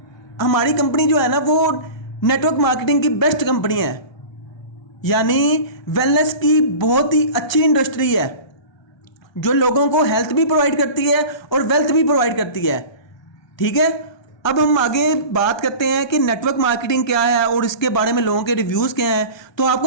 हमारी कंपनी जो है ना वो नेटवर्क मार्केटिंग की बेस्ट कंपनी है, यानी वेलनेस की बहुत ही अच्छी इंडस्ट्री है जो लोगों को हेल्थ भी प्रोवाइड करती है और वेल्थ भी प्रोवाइड करती है, ठीक है। अब हम आगे बात करते हैं कि नेटवर्क मार्केटिंग क्या है और इसके बारे में लोगों के रिव्यूज़ क्या हैं। तो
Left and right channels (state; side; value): late; right; 1.2 ms